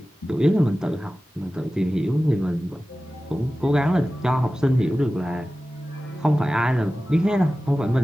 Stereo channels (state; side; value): normal; both; correlation 0.95